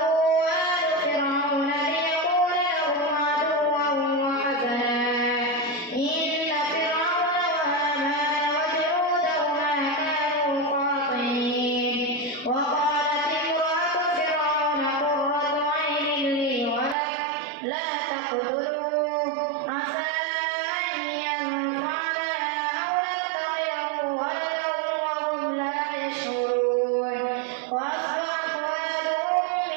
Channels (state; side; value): drops out; left; at 16.9 s